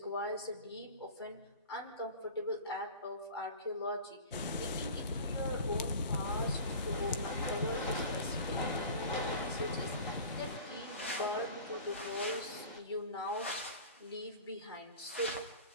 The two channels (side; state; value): both; inverted; correlation -0.38